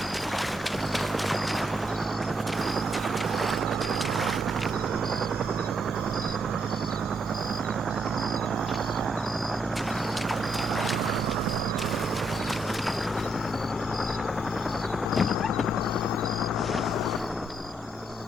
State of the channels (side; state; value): both; normal; correlation 0.76